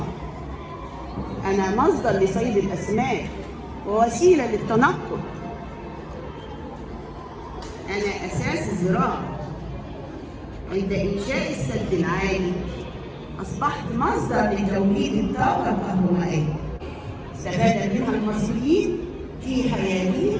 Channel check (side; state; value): both; identical; correlation 1.00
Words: أنا مصدر لصيد الأسماك ووسيلة للتنقل. أنا أساس الزراعة. عند إنشاء السد العالي أصبحت مصدر لتوليد الطاقة الكهربائية، استفاد منها المصريين في